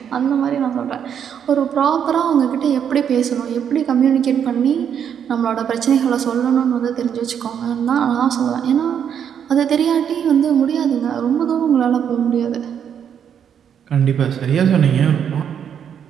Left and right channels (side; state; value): left; quieter; 8.4 dB